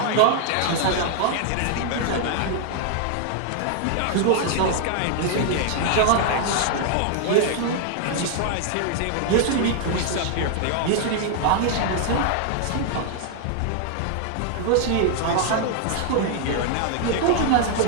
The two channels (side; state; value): both; different; correlation 0.00